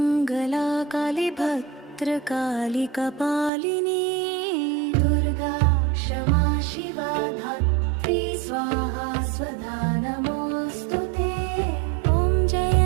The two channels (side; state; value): left; drops out; at 3.5 s